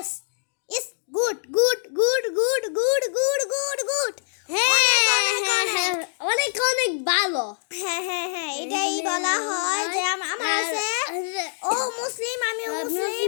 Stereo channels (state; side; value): silent; right; 62 dB below the other